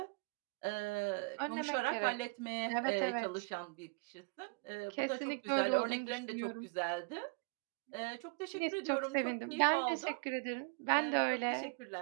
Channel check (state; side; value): quieter; left; 33.9 dB